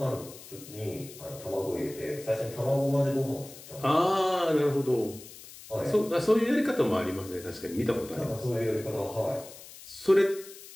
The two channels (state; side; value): noise; left; hiss, 17 dB below the sound